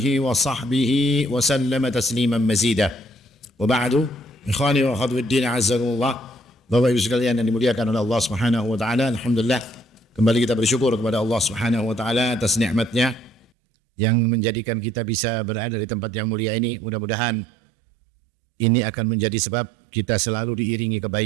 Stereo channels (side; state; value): left; drops out; at 13.5 s